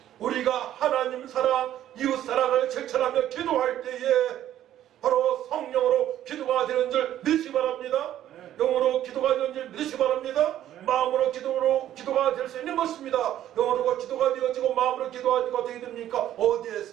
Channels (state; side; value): quieter; left; 12.0 dB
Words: 우리가 하나님 사랑, 이웃 사랑을 실천하며 기도할 때에 바로 성령으로 기도가 되는 줄 믿으시기 바랍니다. 영으로 기도가 되는 줄 믿으시기 바랍니다. 마음으로 기도가 될 수 있는 것입니다. 영으로 기도가 되어지고 마음으로 기도가 되게 됩니까?